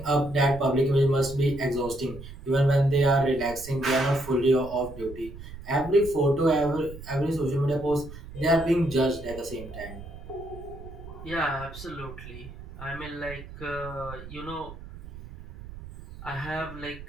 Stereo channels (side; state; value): right; noise; rumble, 14 dB below the sound